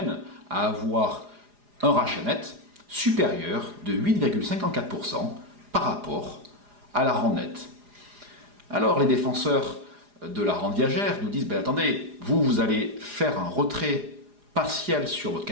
à avoir un rachat net supérieur de 8,54% par rapport à la rente nette. Alors les défenseurs de la rente viagère nous disent attendez, vous allez faire un retrait partiel sur votre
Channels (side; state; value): left; late; 4.9 ms